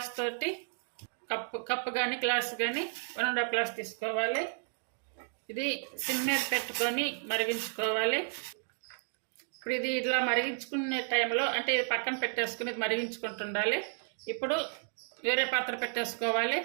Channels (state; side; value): silent; left; 56 dB below the other